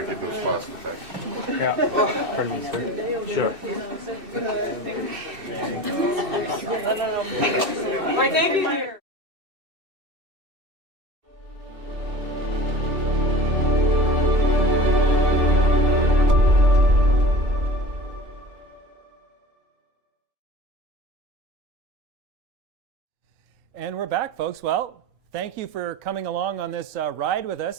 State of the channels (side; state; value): left; late; 2.6 ms